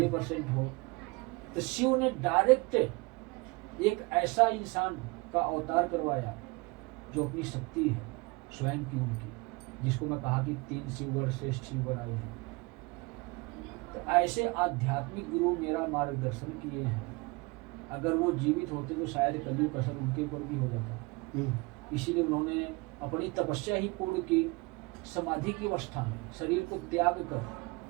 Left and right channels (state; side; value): quieter; left; 25.9 dB